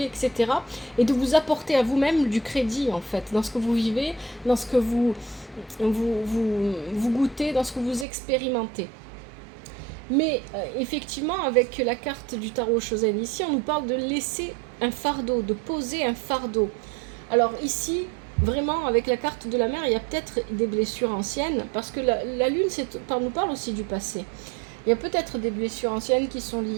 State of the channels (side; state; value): left; drops out; at 8.1 s